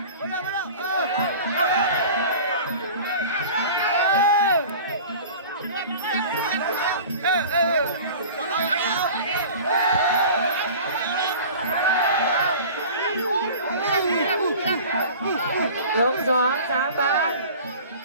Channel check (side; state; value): both; inverted; correlation -0.40